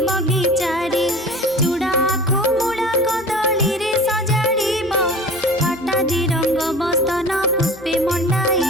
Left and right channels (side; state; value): both; normal; correlation 0.39